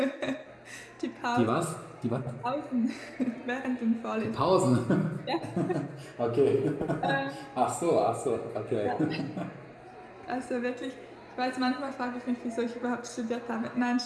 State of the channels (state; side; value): identical; both; correlation 1.00